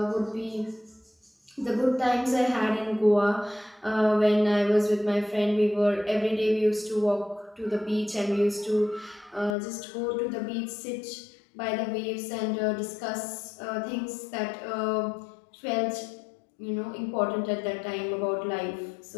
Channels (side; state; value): right; drops out; at 9.6 s